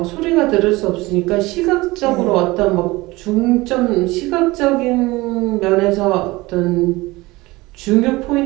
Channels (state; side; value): quieter; left; 21.0 dB